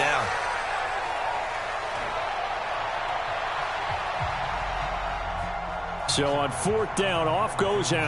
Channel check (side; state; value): both; identical; correlation 1.00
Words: So on 4th down, off goes